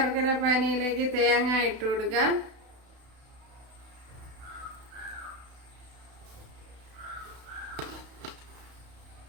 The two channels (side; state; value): left; late; 32 ms